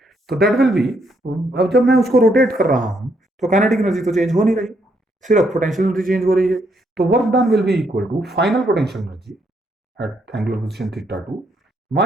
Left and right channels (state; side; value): normal; both; correlation 0.74